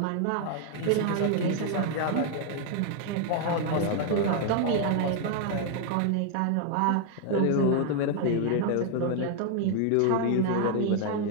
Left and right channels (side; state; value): both; different; correlation 0.00